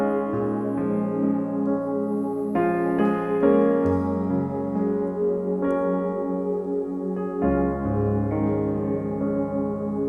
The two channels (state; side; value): identical; both; correlation 1.00